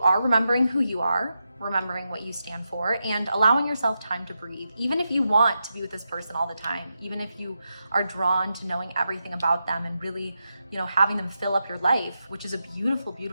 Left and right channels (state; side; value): inverted; both; correlation -0.87